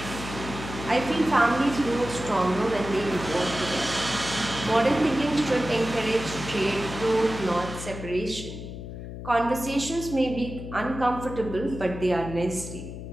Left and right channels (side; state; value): left; noise; hum, 10 dB below the sound